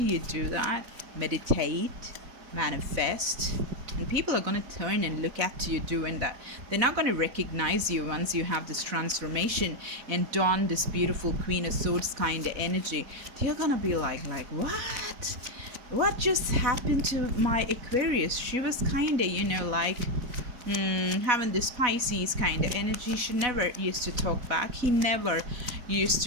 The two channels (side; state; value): left; late; 4.1 ms